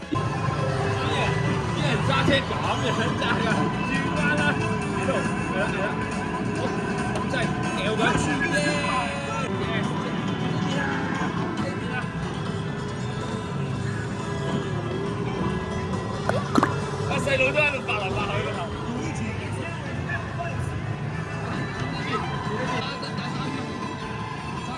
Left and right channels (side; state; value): both; identical; correlation 1.00